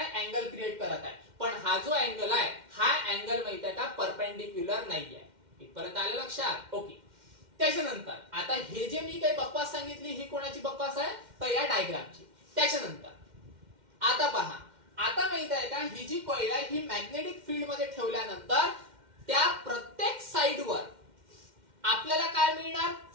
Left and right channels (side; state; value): left; late; 2.1 ms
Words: अँगल क्रिएट करत आहे. पण हा जो अँगल आहे हा अँगल माहित आहे का परपेंडिक्युलर नाही आहे. इथपर्यंत आलं लक्षात? ओके. त्याच्यानंतर आता हे जे मी काही बकवास सांगितली ही कोणाची बकवास आहे? तर या डायग्रामची. त्याच्यानंतर आता पहा आता माहित आहे का ही जी कॉइल आहे ही मॅग्नेटिक फील्ड मध्ये ठेवल्यानंतर त्या प्रत्येक साइडवर आपल्याला काय मिळणार?